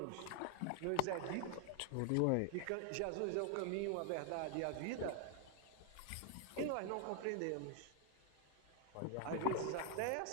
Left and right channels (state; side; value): different; both; correlation 0.00